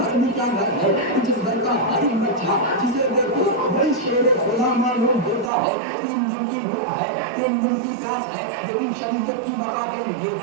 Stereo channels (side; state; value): left; drops out; at 5.5 s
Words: भी क्या घर है, जिस घर का हर एक बच्चा जिसे देखो वही शेर खुदा मालूम होता है। 3 दिन की भूख है, 3 दिन की प्यास है, लेकिन शरीयत की बका के लिए